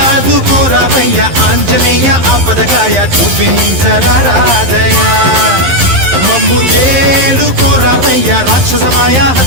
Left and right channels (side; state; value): left; late; 11 ms